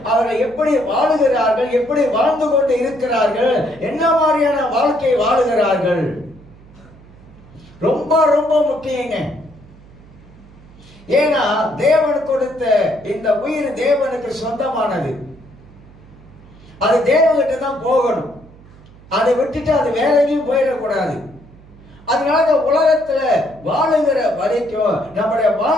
அவர்கள் எப்படி வாழுகிறார்கள், எப்படி வாழ்ந்து கொண்டு இருக்கிறார்கள், என்ன மாதிரியான வாழ்க்கை வாழுகிறார்கள், ரொம்ப ரொம்ப முக்கியங்க. ஏன்னா தேவன் கொடுத்த இந்த உயிர் தேவனுக்கு சொந்தமானது. அது தேவகிட்ட தான் போகணும். அதை விட்டுட்டு அது வேற எங்கேயும் போயிடக்கூடாது. அதனால இந்த உலகத்துல வாழுகிற வரைக்கும் நம்முடைய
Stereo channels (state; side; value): noise; right; hum, 23 dB below the sound